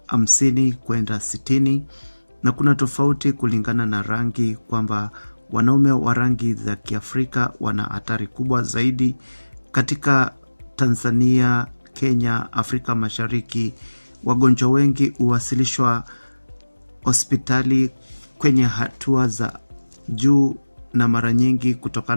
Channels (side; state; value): both; inverted; correlation -1.00